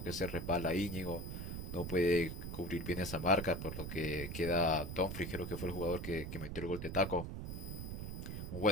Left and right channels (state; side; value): noise; right; rumble, 6 dB below the sound